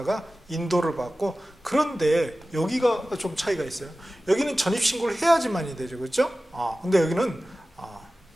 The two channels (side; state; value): both; normal; correlation 0.96